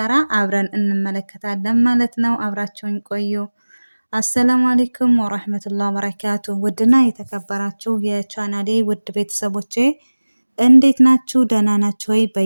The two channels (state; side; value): inverted; both; correlation -1.00